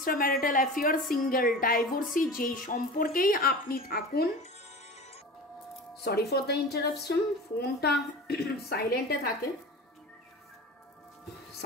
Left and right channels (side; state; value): both; normal; correlation 0.34